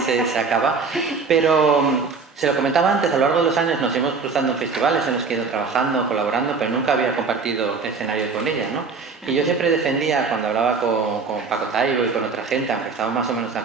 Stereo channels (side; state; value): left; quieter; 4.8 dB